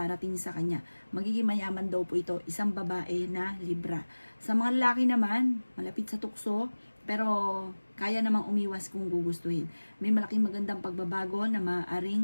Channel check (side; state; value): both; inverted; correlation -1.00